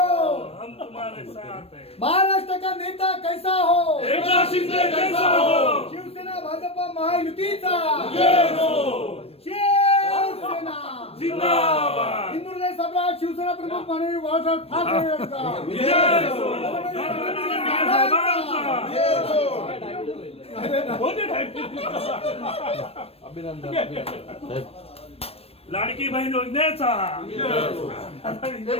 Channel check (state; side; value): late; right; 0.28 ms